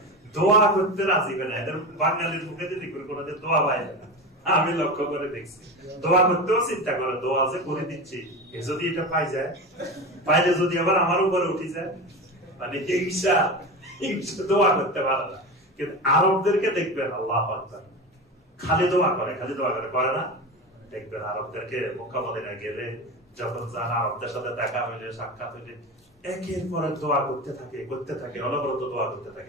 দোয়া করতে রাজি না। এদের বাঙালির মুখে যদি কোনোদিন দোয়া পায় না, আমি লক্ষ্য করে দেখছি। দোয়া করতেও চিন্তা করে, দোয়া যে করে দিচ্ছি যদি এটা পাই যায়, পাইলে যদি আবার আমার উপরে উঠে যায়, মানে হিংসা, হিংসা দোয়া করতে পারে না। কিন্তু আরবদেরকে দেখবেন আল্লাহু আকবার, খালি দোয়া করে, খালি দোয়া করে, করে না? দেখবেন আরবদেরকে মক্কা মদিনা গেলে যখন যান, আরবদের সাথে দেখা হইলে, সাক্ষাৎ হইলে একের পর এক দোয়া করতে থাকে, অনবরত দোয়া করতে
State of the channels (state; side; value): normal; both; correlation 0.25